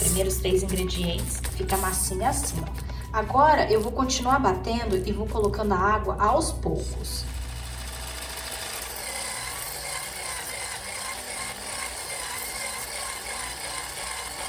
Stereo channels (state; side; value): identical; both; correlation 1.00